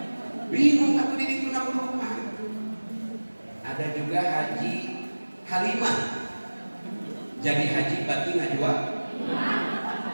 Bingung aku di itu nak rumah. Ada juga haji halimah. Jadi haji berarti ngajwa.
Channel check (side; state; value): both; inverted; correlation -1.00